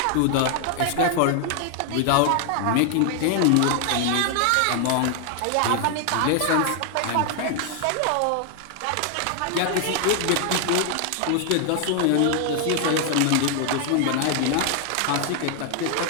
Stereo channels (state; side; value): different; both; correlation 0.00